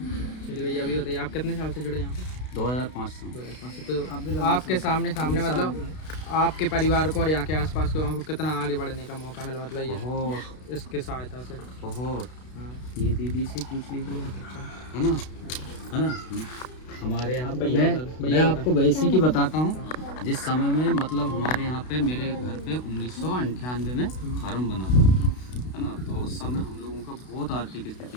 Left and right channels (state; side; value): late; right; 32 ms